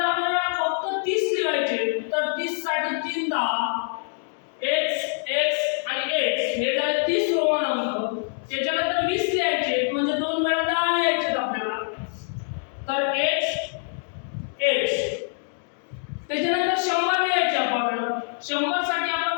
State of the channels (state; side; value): silent; right; 58 dB below the other